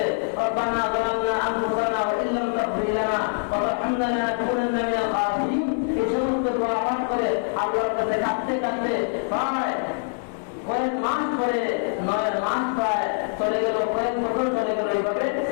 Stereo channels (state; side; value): silent; right; 61 dB below the other